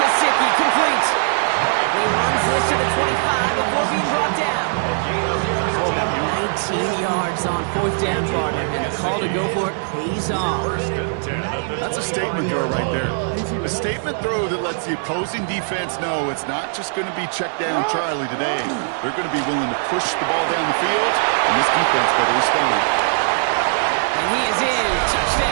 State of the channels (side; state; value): left; silent; digital silence